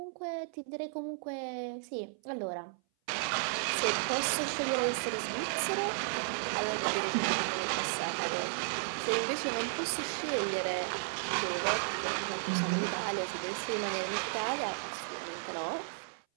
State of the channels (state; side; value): silent; left; 55 dB below the other